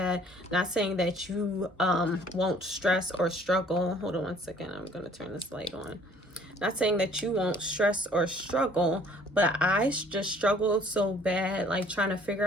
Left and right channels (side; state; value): both; normal; correlation 0.57